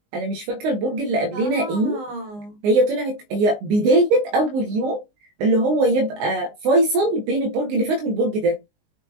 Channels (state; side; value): late; left; 19 ms